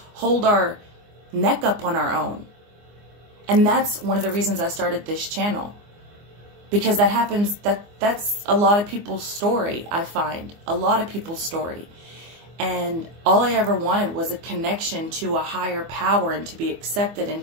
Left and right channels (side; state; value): left; late; 24 ms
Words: hold our neck up on our own. And that's one of the reasons I started this channel. Because that happens, that's a lot of people's story, I find. A lot of people's story. And all I ever wanted was a connection to a higher power and to be accepted and